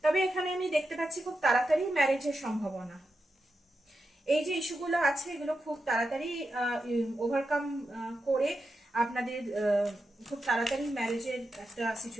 তবে এখানে আমি দেখতে পাচ্ছি খুব তাড়াতাড়ি ম্যারেজের সম্ভাবনা। এই যে ইস্যুগুলো আছে এগুলো খুব তাড়াতাড়ি ওভারকাম করে আপনাদের খুব তাড়াতাড়ি ম্যারেজের একটা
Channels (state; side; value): normal; both; correlation 0.88